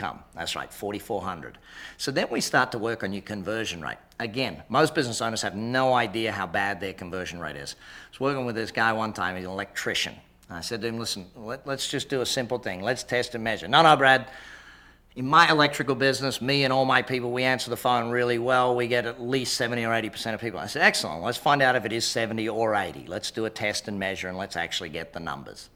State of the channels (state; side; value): identical; both; correlation 1.00